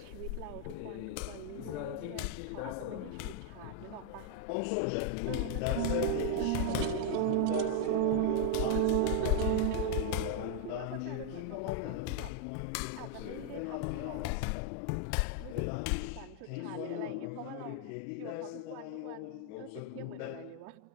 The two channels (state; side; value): different; both; correlation 0.00